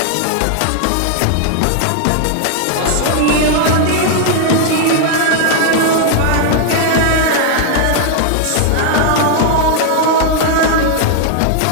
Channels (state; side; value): different; both; correlation 0.00